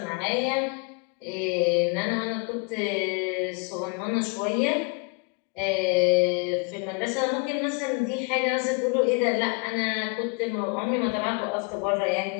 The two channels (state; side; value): quieter; right; 33.4 dB